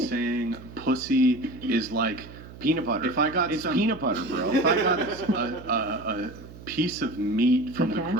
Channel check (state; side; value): noise; right; hum, 16 dB below the sound